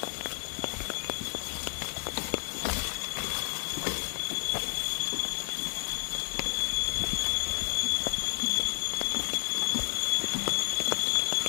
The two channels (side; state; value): right; silent; 57 dB below the other